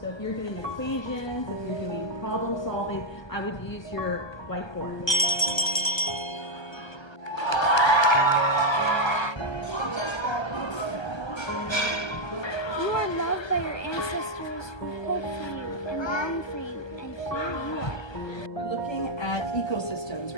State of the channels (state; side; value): late; right; 1.3 ms